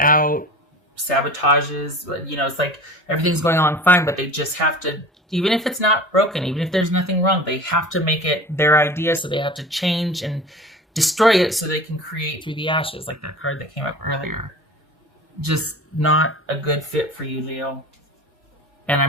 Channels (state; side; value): normal; both; correlation 0.38